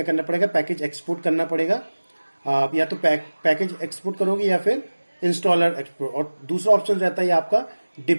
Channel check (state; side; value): inverted; both; correlation -1.00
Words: करना पड़ेगा, पैकेज एक्सपोर्ट करना पड़ेगा। या तो पैकेज एक्सपोर्ट करोगे या फिर इंस्टॉलर एक्सपोर्ट, और दूसरा ऑप्शन रहता है आपका